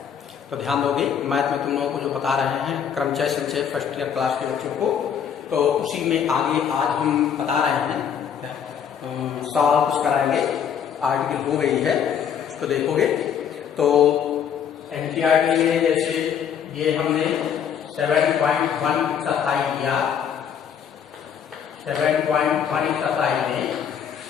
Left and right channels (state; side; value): quieter; right; 8.1 dB